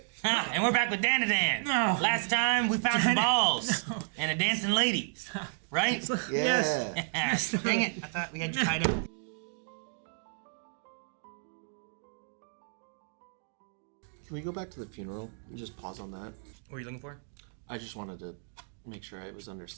And we're back with Dandadan. No. Last time we found some balls and a dancing lady. Right? Yeah. Dang it. I thought we had you tied up. Can we go back to the funeral and just pause on that? What are you looking for? I just wanted to make sure I was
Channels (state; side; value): silent; left; digital silence